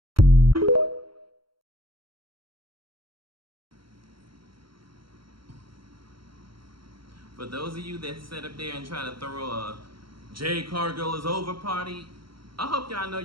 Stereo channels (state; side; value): late; left; 0.74 ms